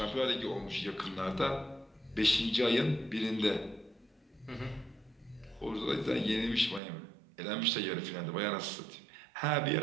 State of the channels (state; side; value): drops out; left; at 6.8 s